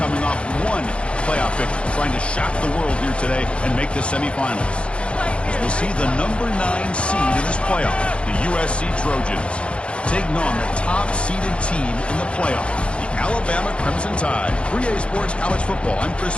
off one playoff victory, trying to shock the world here today and make the semifinals. As we'll see the number 9 seed in this playoff, the USC Trojans, taking on the top-seeded team in the playoff, the Alabama Crimson Tide. 3A Sports College Football. I'm Chris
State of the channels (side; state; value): right; late; 0.059 ms